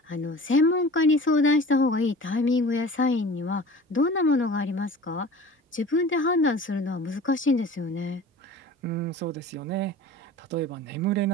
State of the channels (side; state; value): both; normal; correlation 0.40